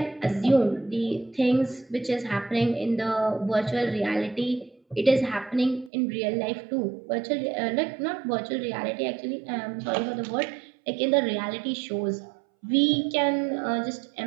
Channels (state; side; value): drops out; left; at 5.9 s